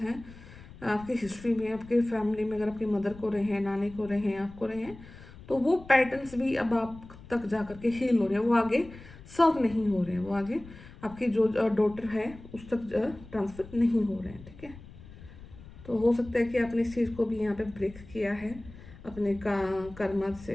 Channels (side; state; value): left; noise; rumble, 18 dB below the sound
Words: आपकी हिस्ट्री में, आपके फैमिली में, अगर आपकी मदर को रहे हैं, नानी को रहे हैं, आपको रहे हैं, तो वो पैटर्न्स भी अब आप तक जा करके हील हो रहे हैं, वो आगे सर्व नहीं हो रहे हैं, वो आगे आपकी जो डॉटर है उस तक ट्रांसफर नहीं हो रहे हैं, ठीक है। तो हो सकता है कि आपने इस चीज़ को भी यहाँ पे ब्रेक किया है अपने कर्म